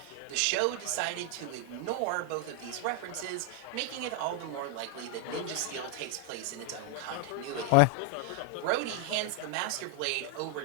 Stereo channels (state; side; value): different; both; correlation 0.00